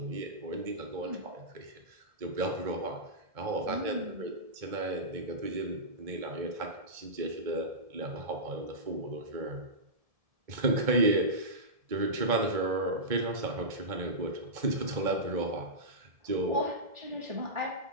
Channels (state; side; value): late; left; 1.7 ms